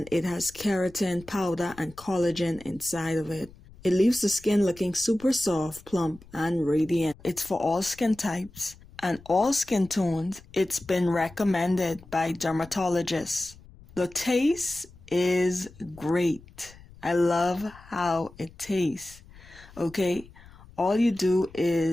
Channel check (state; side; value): noise; left; rumble, 22 dB below the sound